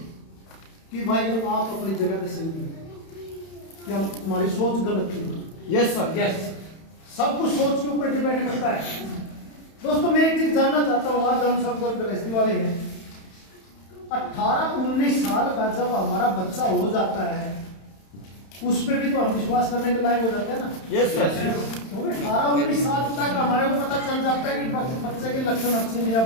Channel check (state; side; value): late; right; 31 ms